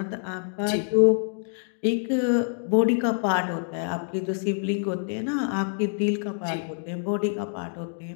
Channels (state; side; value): silent; right; digital silence